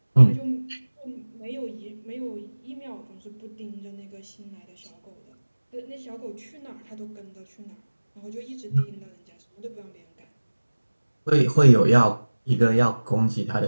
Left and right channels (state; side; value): inverted; both; correlation -1.00